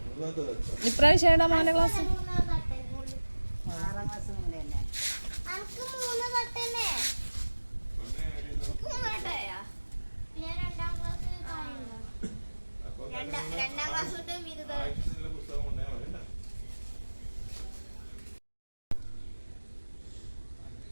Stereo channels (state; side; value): inverted; both; correlation -1.00